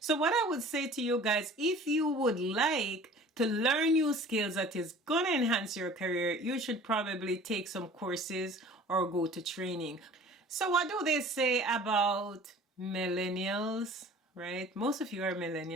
So what I would say to you guys, if you would like to learn new skills that is going to enhance your career, you should probably take some courses or go to training. So what do they say about millennials, right? Most of you are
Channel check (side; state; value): both; normal; correlation 0.46